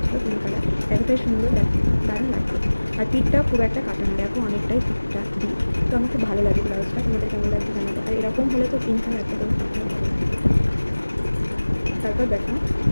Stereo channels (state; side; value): inverted; both; correlation -1.00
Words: পিঙ্ক কালার, এতটাই সুন্দর, দারুণ লাগছে। আর পিঠটাও খুব একটা কাটা না, দেখো অনেকটাই পিঠটা দিই। তো আমার খুব ভালো লাগে ব্লাউজটা, তোমাদের কেমন লাগছে জানাবো। আর এরকম হলে তো পিঙ্ক কালার একটা তারপর দেখো